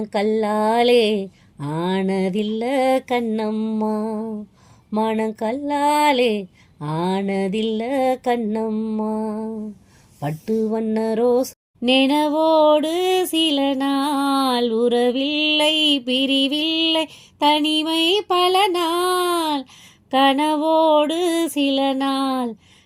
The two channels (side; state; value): both; identical; correlation 1.00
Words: ஆனதில்ல கண்ணம்மா. மனக்கல்லாலே ஆனதில்ல கண்ணம்மா. பட்டு வண்ண ரோஸ் நினைவோடு சில நாள், உறவில்லை பிரிவில்லை தனிமை பல நாள். கனவோடு சில நாள்,